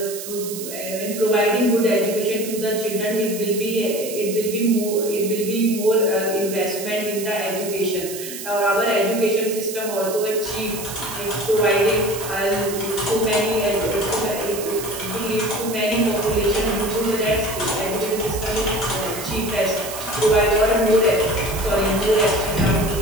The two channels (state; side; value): noise; right; hiss, 9 dB below the sound